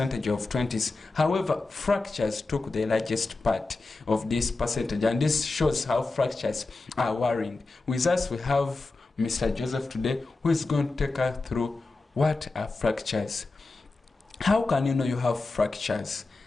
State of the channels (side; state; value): right; quieter; 3.5 dB